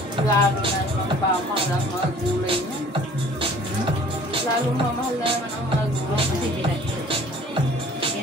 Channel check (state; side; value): normal; both; correlation 0.51